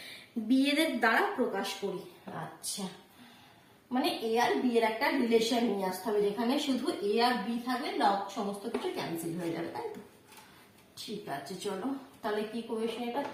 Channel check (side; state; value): both; identical; correlation 1.00